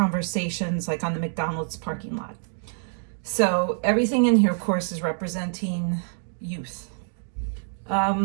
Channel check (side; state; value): left; silent; digital silence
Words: like on the McDonald's parking lot. So everything in here, of course, is representing youth.